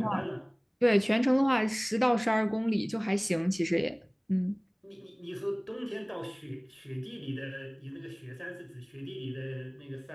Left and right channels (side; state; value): both; identical; correlation 1.00